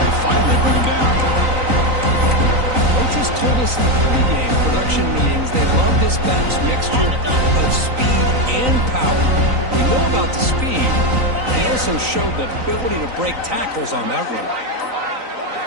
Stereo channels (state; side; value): late; left; 3.9 ms